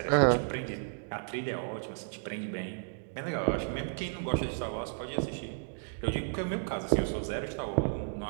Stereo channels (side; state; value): left; silent; digital silence